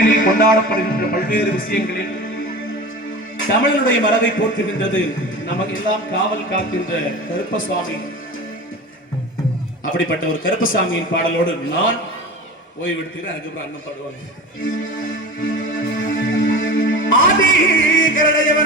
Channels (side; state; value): both; normal; correlation 0.32